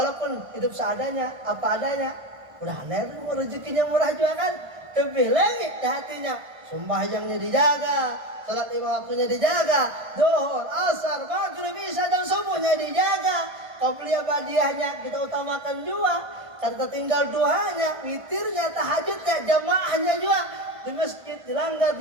hidup seadanya, apa adanya, udah aneh, rezekinya murah juga kan, lebih lagi di hatinya, sembahyangnya dijaga, salat 5 waktunya dijaga, zuhur, asar, maghrib, isya dan subuhnya dijaga, qobliyah badiahnya kita utamakan juga, kata tinggal duhanya, witirnya, tahajudnya, jamaahnya juga di masjid, di langgar,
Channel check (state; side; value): late; left; 1.5 ms